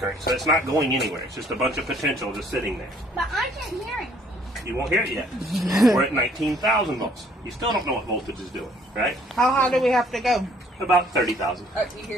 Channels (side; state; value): both; normal; correlation 0.61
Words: so it's not going anywhere. It's just a bunch of potential just sitting there. But I can't hear it. You won't hear it yet. We're at 19,000 volts. You still don't know what voltage is doing, right? How high do we have to go? About 30,000. Oh, you